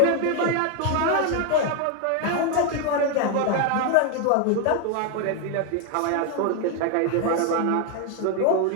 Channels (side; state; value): both; different; correlation 0.01